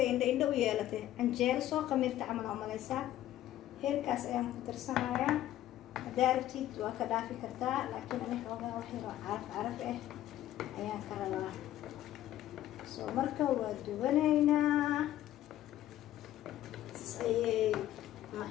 indho u yeelatay canjeero soo qamiirta camal umaleysaa heelkaas ayaan ku darsanayaa haddaa rabtid waa ka dhaafi kartaa laakiin ani xoogaa wax yaroo caraf ah ayaan ka rabaa soo marka waa dubanaynaa ayay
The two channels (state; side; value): quieter; right; 13.2 dB